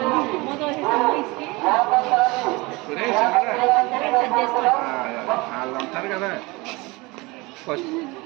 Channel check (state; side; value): quieter; left; 24.1 dB